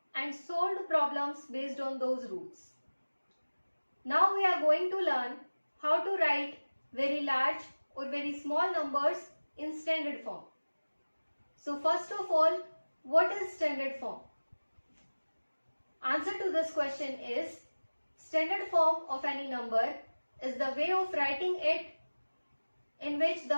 and solved problems based on those rules. Now we are going to learn how to write very large or very small numbers in standard form. So first of all, what is standard form? Answer to this question is standard form of any number is the way of writing it in which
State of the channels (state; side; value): inverted; both; correlation -1.00